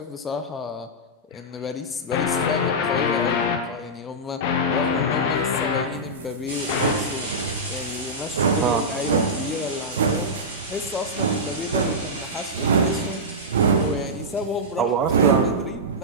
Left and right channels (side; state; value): both; normal; correlation -0.11